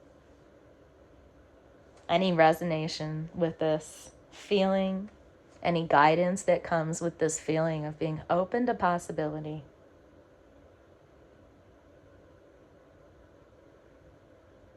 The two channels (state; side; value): identical; both; correlation 1.00